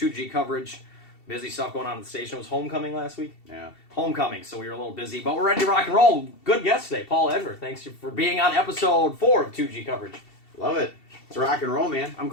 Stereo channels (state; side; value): late; right; 2.7 ms